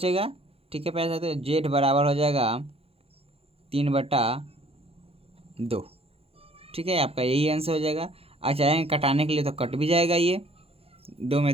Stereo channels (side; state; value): left; late; 0.28 ms